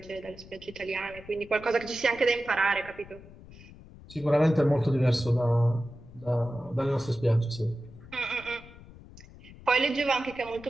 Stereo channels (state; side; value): noise; left; rumble, 19 dB below the sound